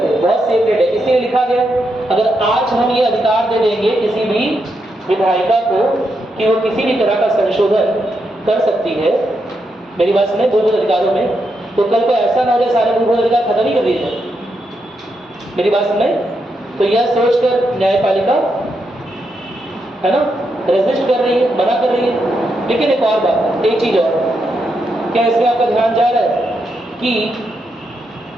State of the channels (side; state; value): both; normal; correlation 0.82